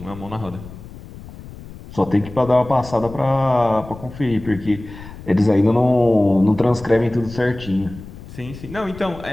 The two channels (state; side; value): noise; left; rumble, 15 dB below the sound